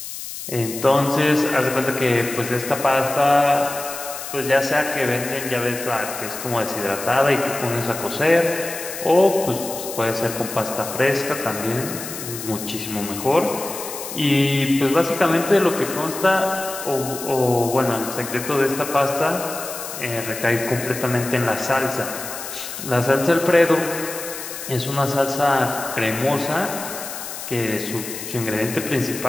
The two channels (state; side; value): noise; left; hiss, 9 dB below the sound